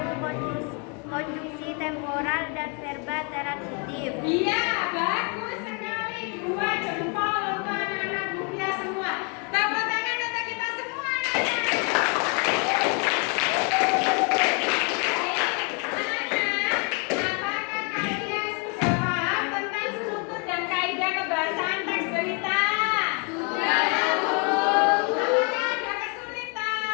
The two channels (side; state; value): right; quieter; 36.0 dB